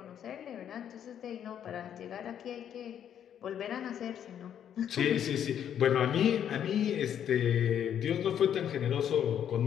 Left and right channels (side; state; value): right; quieter; 9.4 dB